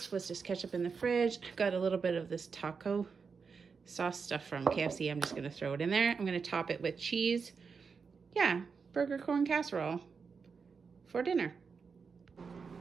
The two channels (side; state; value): left; quieter; 5.4 dB